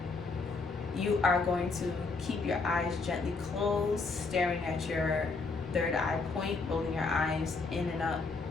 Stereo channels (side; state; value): right; quieter; 4.1 dB